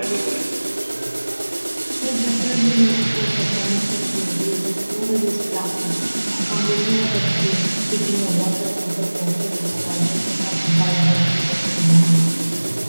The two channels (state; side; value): inverted; both; correlation -1.00